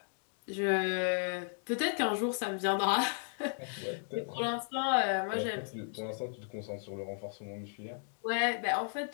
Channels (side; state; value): right; silent; digital silence